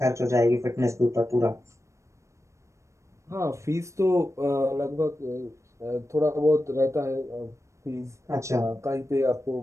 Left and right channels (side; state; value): left; late; 0.15 ms